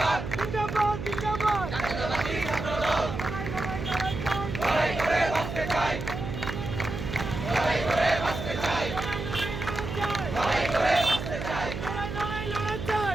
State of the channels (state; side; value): noise; right; hum, 6 dB below the sound